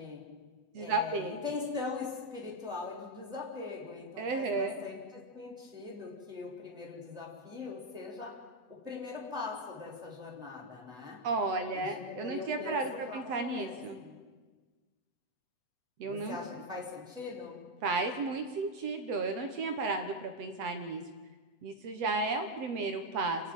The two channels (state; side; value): late; left; 8.0 ms